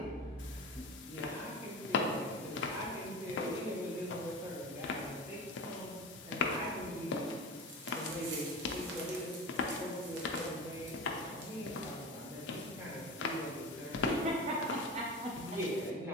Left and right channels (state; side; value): normal; both; correlation 0.28